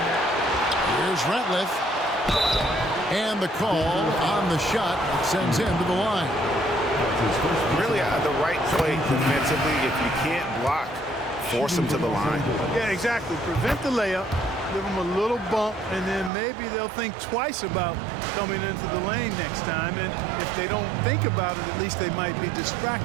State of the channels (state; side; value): drops out; left; at 16.3 s